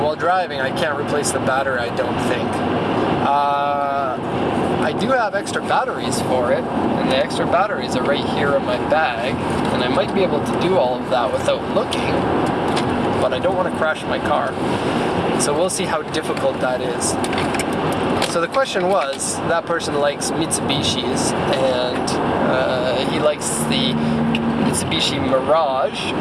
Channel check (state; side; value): identical; both; correlation 1.00